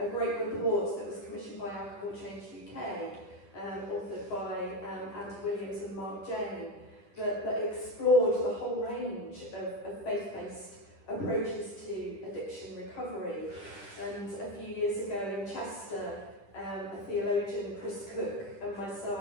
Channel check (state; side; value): late; right; 10 ms